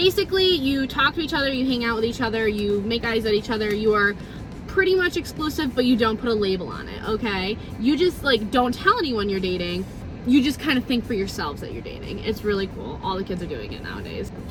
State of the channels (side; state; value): both; identical; correlation 1.00